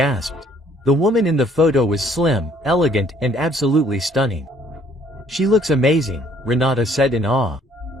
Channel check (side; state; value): both; normal; correlation 0.61